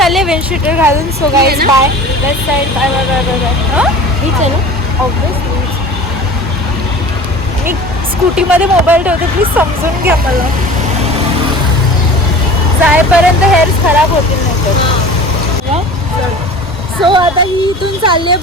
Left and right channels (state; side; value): normal; both; correlation 0.40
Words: विंडशीटर घालून. So guys bye. Let's side bye bye bye bye bye. हीच आहे ना ऑब्वियसली. मी स्कूटीमध्ये मोबाईल ठेवते, प्लीज समजून घ्या मला. जायपर्यंत हेअर खराब होतील नाही तर. सो आता ही इथून चालली आहे